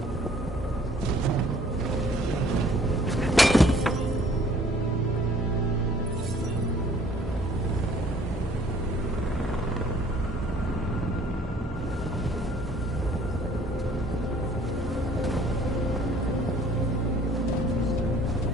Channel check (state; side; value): normal; both; correlation 0.57